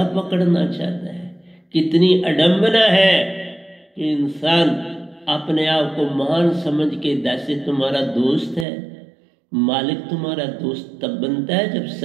पकड़ना चाहता है। कितनी अडंबना है कि इंसान अपने आप को महान समझ के जैसे तुम्हारा दोस्त है। मालिक तुम्हारा दोस्त तब बनता है जब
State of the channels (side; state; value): left; drops out; at 8.7 s